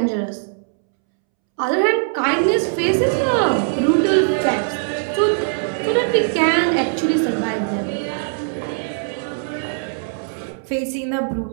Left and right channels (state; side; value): silent; left; 65 dB below the other